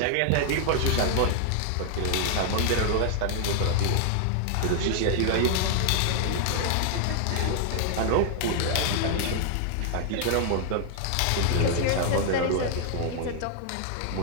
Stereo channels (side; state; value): both; different; correlation 0.00